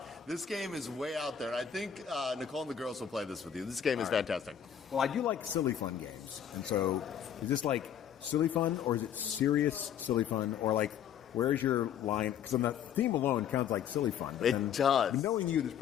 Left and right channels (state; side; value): quieter; right; 8.9 dB